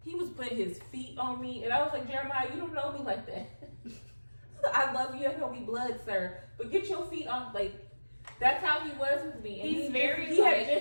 he was putting his feet on me, and I was like, Jeremiah, you don't know me like that. I love you. I know we blood, sir, but get your feet on. Like that's how he was with me. And He's he very, He like-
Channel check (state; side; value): inverted; both; correlation -1.00